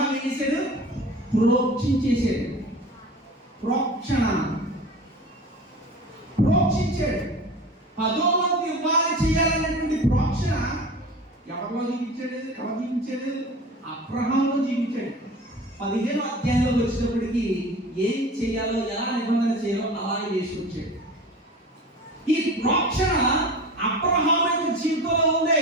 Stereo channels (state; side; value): normal; both; correlation 0.36